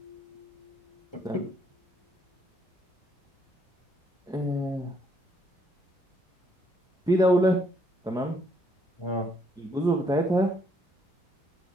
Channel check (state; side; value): normal; both; correlation 0.70